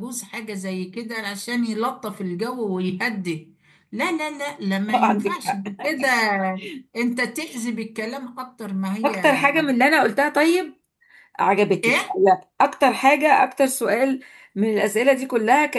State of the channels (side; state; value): both; identical; correlation 1.00